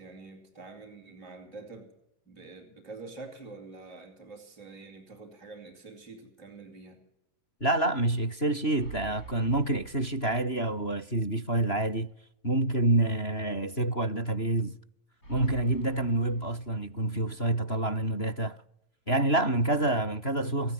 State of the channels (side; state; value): right; late; 3.0 ms